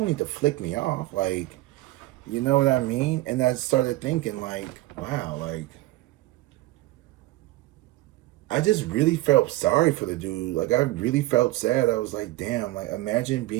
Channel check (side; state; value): left; quieter; 17.8 dB